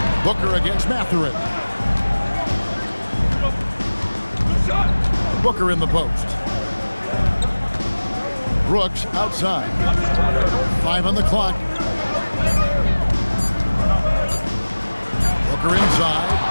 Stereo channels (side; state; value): both; inverted; correlation -1.00